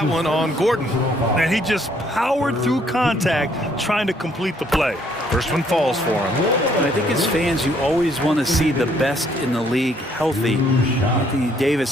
one on Gordon. And he just powered through contact trying to complete the play. First one falls for him. And I think as fans, you always want to see the best in the league healthy. Anthony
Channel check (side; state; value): both; normal; correlation 0.66